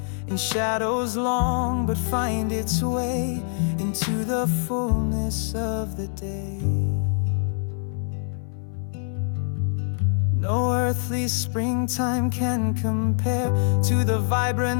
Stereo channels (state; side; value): silent; right; 59 dB below the other